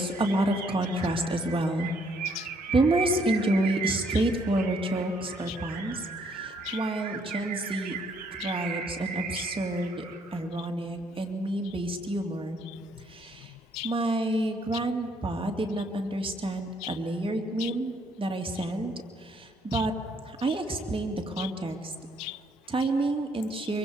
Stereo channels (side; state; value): both; normal; correlation 0.68